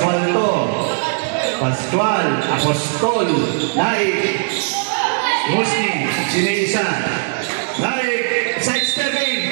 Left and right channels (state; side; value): silent; left; 59 dB below the other